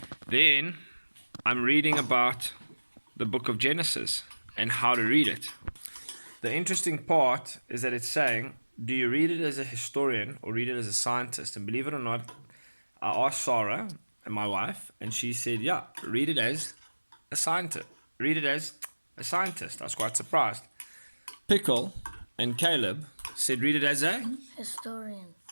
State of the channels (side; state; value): both; inverted; correlation -1.00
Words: Then I'm reading about the book of Genesis and how to read it. The interesting part is that it's saying, do you read it as a historian or read it as a scientist? And believe it or not, I asked Sarah, and my wife, and she said, yeah, read it as a scientist. Read it as a scientist. I was quite surprised. Pickle and Caleb said read it as a Historian.